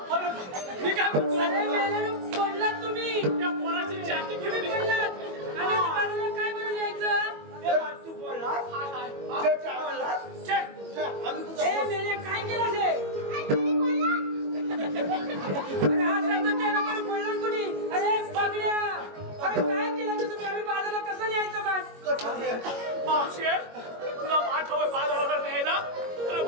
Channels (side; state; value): left; late; 21 ms